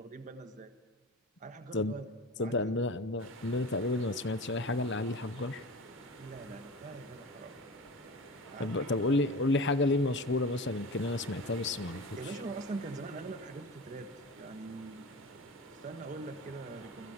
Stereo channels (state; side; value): normal; both; correlation 0.33